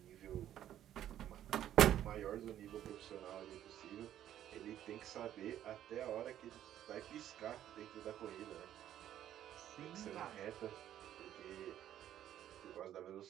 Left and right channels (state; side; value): quieter; left; 11.5 dB